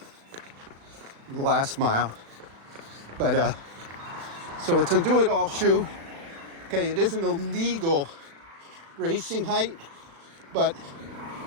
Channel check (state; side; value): late; left; 36 ms